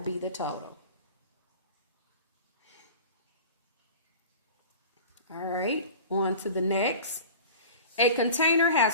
be the total. All right, on to the next. A container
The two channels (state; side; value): inverted; both; correlation -0.38